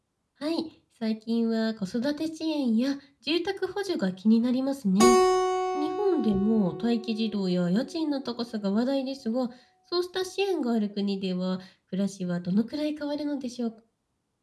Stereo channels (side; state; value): both; identical; correlation 1.00